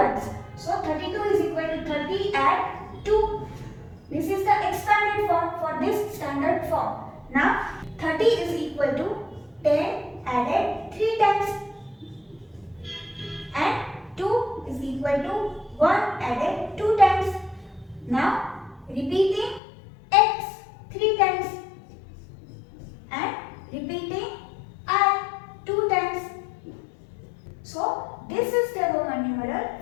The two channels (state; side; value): drops out; right; at 19.6 s